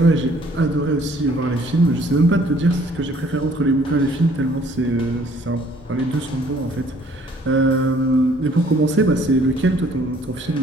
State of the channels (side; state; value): both; normal; correlation 0.59